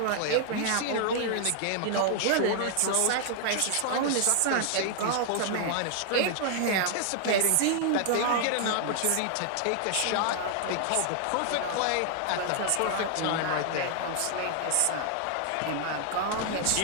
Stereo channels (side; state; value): both; different; correlation 0.00